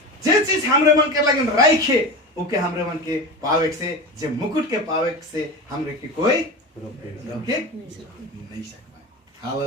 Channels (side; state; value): both; normal; correlation 0.26